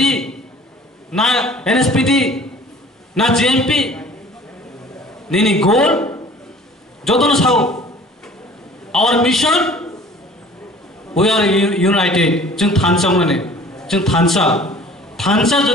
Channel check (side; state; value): both; normal; correlation 0.48